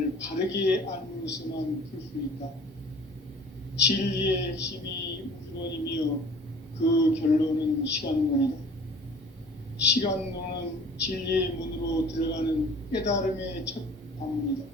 바르게 알므로서만 풀 수 있다. 진리의 핵심이 우주론이며 그 결론은 시간론이다. 시간론은 진리의 문으로 들어가는 깨달음의 첫 방문이다.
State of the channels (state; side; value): normal; both; correlation 0.47